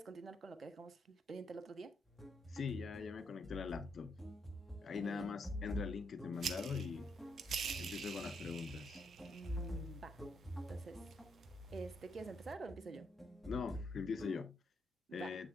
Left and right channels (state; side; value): normal; both; correlation 0.77